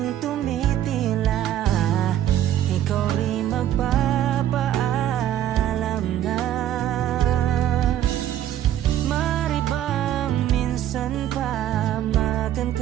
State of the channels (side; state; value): left; quieter; 11.7 dB